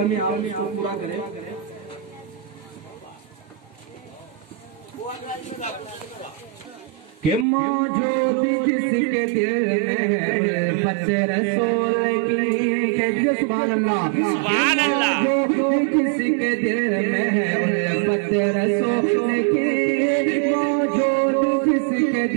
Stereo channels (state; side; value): drops out; left; at 7.5 s